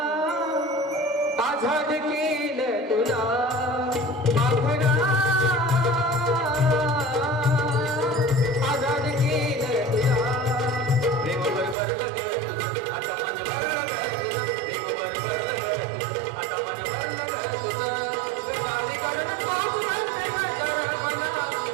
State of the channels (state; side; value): drops out; left; at 11.8 s